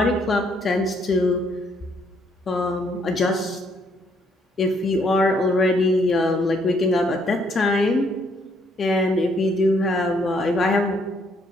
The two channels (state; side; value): normal; both; correlation 0.69